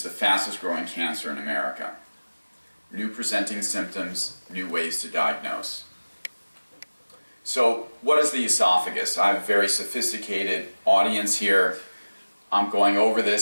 the fastest growing cancer in America. New presenting symptoms, new ways to diagnose. So what is the esophagus? I have a very sophisticated audience here. I'm going over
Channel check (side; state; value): both; inverted; correlation -1.00